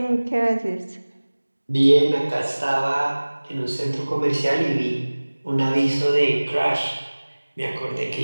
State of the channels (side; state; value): both; inverted; correlation -1.00